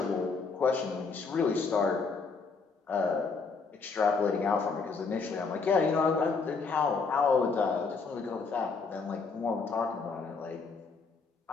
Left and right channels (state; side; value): quieter; right; 4.7 dB